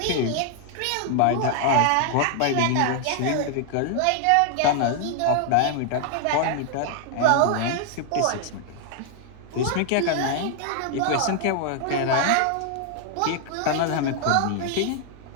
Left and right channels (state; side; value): different; both; correlation 0.00